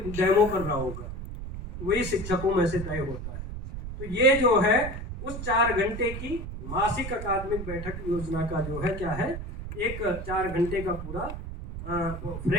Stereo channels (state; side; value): noise; right; rumble, 8 dB below the sound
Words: कर रहा होगा, वही शिक्षकों में से तय होता है। तो ये जो है उस 4 घंटे की मासिक अकादमिक बैठक योजना का जो है क्या है, एक 4 घंटे का पूरा